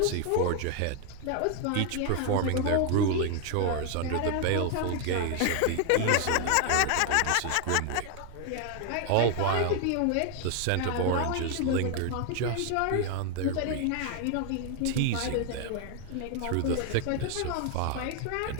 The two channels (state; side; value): different; both; correlation 0.00